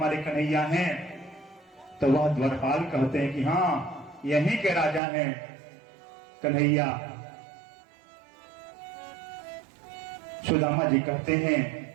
कन्हैया हैं। तो वह द्वारपाल कहते हैं कि हाँ, यहीं के राजा हैं कन्हैया। सुदामा जी कहते हैं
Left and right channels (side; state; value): left; drops out; at 5.0 s